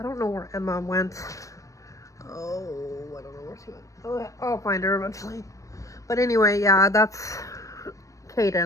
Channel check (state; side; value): late; right; 0.16 ms